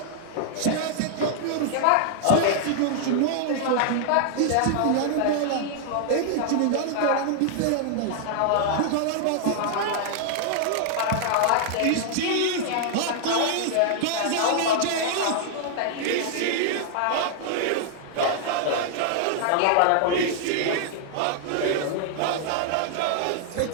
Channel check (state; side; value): different; both; correlation -0.01